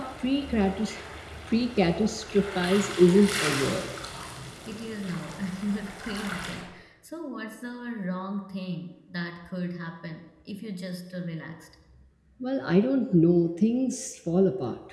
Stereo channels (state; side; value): identical; both; correlation 1.00